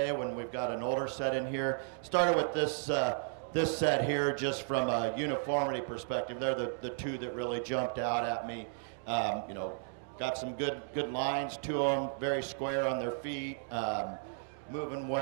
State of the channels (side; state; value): left; silent; digital silence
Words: when we've got an older set in here? Started with this this set here just from a uniformity perspective. They're the two that really jumped out at me. You know, got some good lines to them, very square on their feet, moving